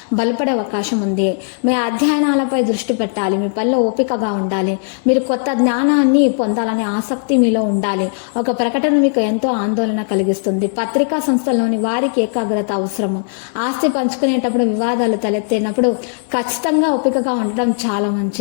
బలపడే అవకాశం ఉంది. మీ అధ్యయనాలపై దృష్టి పెట్టాలి. మీ పనిలో ఓపికగా ఉండాలి. మీరు కొత్త జ్ఞానాన్ని పొందాలనే ఆసక్తి మీలో ఉండాలి. ఒక ప్రకటన మీకు ఎంతో ఆందోళన కలిగిస్తుంది. పత్రికా సంస్థల్లోని వారికి ఏకాగ్రత అవసరము. ఆస్తి పంచుకునేటప్పుడు వివాదాలు తలెత్తినప్పుడు ఖచ్చితంగా ఓపికగా ఉండడం చాలా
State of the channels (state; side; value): silent; right; 61 dB below the other